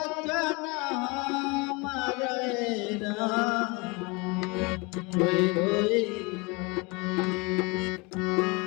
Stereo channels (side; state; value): right; quieter; 27.7 dB